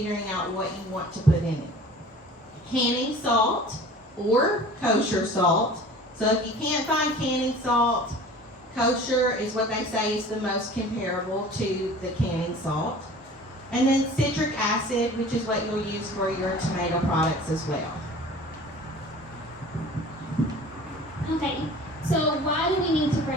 out what you want to put in it. Canning salt or kosher salt. So if you can't find canning salt, kosher is what they say is the most comparable to the canning salt. And then citric acid, which is what you'll use for your tomato products as well. Okay, so why do we need to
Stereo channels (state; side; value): normal; both; correlation 0.44